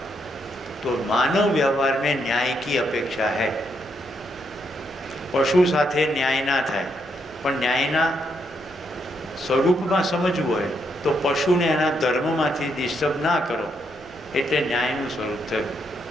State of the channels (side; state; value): left; noise; rumble, 29 dB below the sound